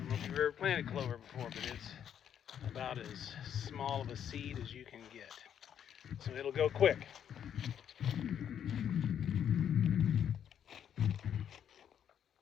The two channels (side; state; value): right; quieter; 9.1 dB